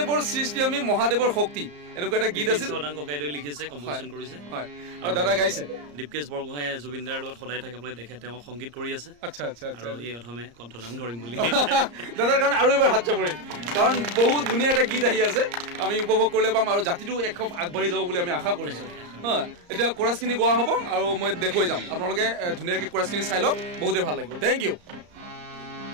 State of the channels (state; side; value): late; left; 34 ms